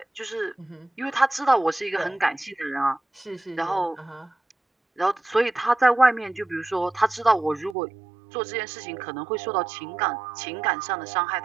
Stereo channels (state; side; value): drops out; left; at 7.8 s